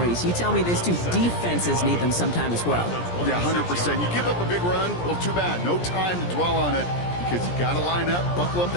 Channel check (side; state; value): right; late; 17 ms